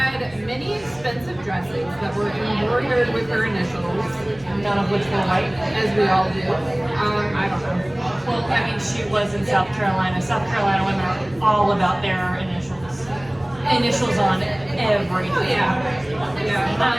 many expensive dresses that were embroidered with her initials, None of which were white. as we all do. I don't know. Well, I mean, she was in South Carolina. South Carolina women are all about their initials. Initials on everything. Oh yeah. Yeah.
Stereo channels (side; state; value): right; noise; hum, 23 dB below the sound